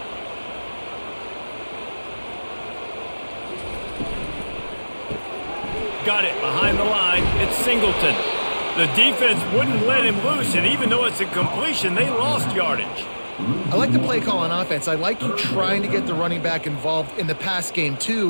Got it behind the line. It's Singleton. The defense wouldn't let him loose, and even though it's a completion, they lost yardage. I like the play call on offense. I like you trying to get the running back involved in the pass game,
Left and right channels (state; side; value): inverted; both; correlation -1.00